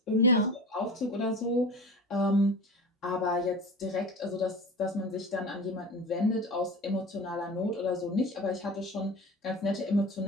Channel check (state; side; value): normal; both; correlation 0.33